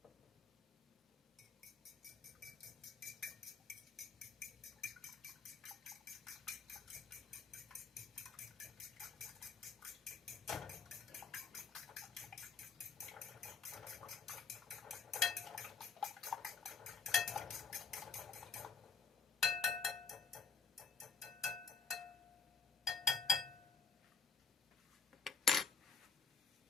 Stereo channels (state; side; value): quieter; right; 5.3 dB